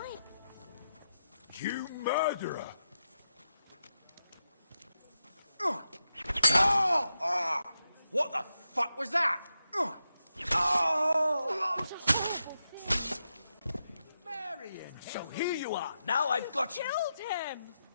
You murderer! What the fuck was that? Marion! So here you are. Now I've got you. Killed him!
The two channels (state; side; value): inverted; both; correlation -0.87